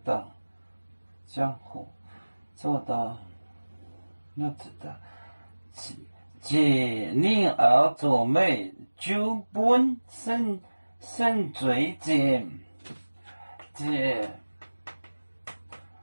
当江湖做到要知道，借令而作美，就本生罪见，借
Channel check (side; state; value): both; inverted; correlation -1.00